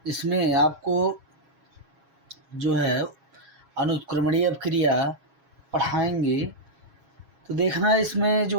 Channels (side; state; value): left; late; 7.3 ms